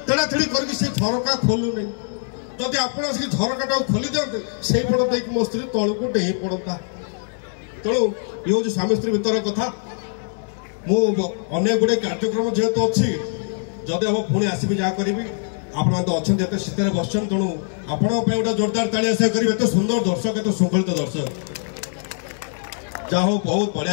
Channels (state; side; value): silent; right; digital silence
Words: ତେଡ଼ାତେଡ଼ି କରିକି ସେ ଝରକା ଖୋଲୁନି ଯଦି ଆପଣ ଆସିକି ଝରକାଟାକୁ ଖୋଲି ଦିଅନ୍ତେ ସେଇ ପଟ ଦେଇକି ମୋ ସ୍ତ୍ରୀ ତଳକୁ ଡେଇଁ ପଡ଼ନ୍ତା ତେଣୁ ଇଏ ହେଉଛି ସ୍ୱାମୀ ସ୍ତ୍ରୀ ଭିତର କଥା ମୁଁ ଅନେକ ଗୁଡ଼ିଏ କାର୍ଯ୍ୟକ୍ରମ ଯେହେତୁ ଅଛି ଯଦି ହବ ପୁଣି ଆସିବି ଯାହା କରିବି ଆପଣମାନେ ତ ଅଛନ୍ତି ଏତେ ଶୀତରେ ବସିଛନ୍ତି ତେଣୁ ଆପଣଙ୍କ ପାଇଁ ଗୋଟେ ଜୋରଦାର ତାଳି ଆଶା କରିବି ଏତେ ସୁନ୍ଦର ଦର୍ଶକ ଏତେ ଶୃଙ୍ଖଳିତ ଦର୍ଶକ ଯାହା ହଉ ବହୁତ